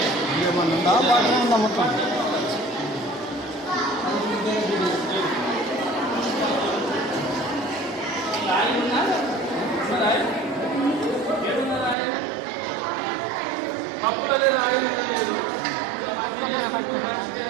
ఉందా మొత్తం అప్పుడే రాయలు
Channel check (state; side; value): drops out; left; at 12.0 s